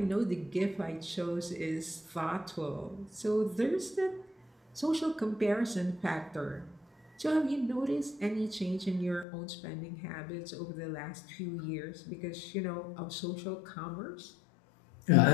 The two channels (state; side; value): drops out; right; at 9.2 s